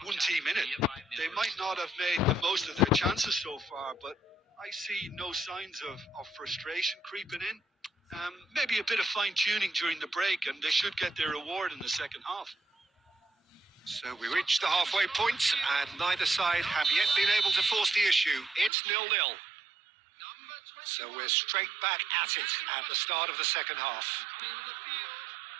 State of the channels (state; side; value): drops out; left; at 18.7 s